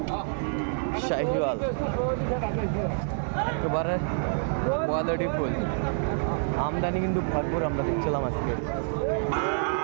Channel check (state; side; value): silent; left; digital silence